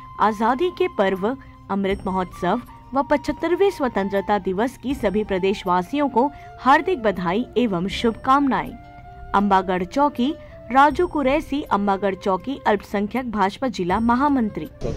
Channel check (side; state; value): both; identical; correlation 1.00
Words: आजादी के पर्व अमृत महोत्सव व 75वें स्वतंत्रता दिवस की सभी प्रदेशवासियों को हार्दिक बधाई एवं शुभकामनाएं। अंबागढ़ चौकी, राजू कुरैशी, अंबागढ़ चौकी, अल्पसंख्यक भाजपा जिला महामंत्री।